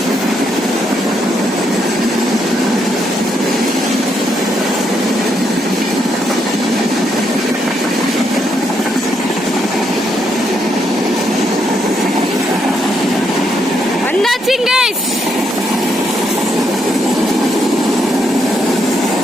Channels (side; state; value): both; normal; correlation 0.77